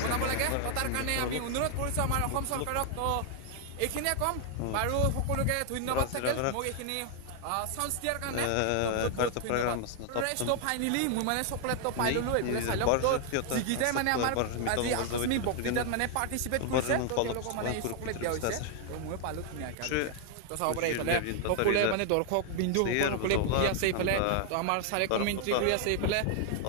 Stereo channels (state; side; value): different; both; correlation 0.00